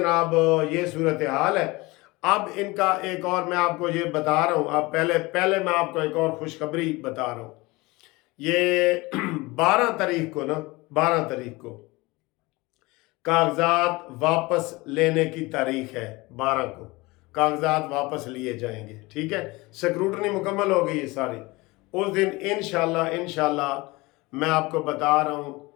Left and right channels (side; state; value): right; quieter; 22.8 dB